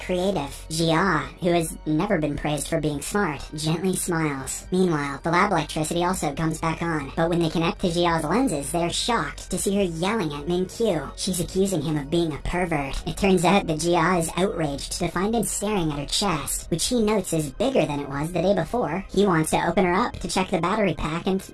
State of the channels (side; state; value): both; identical; correlation 1.00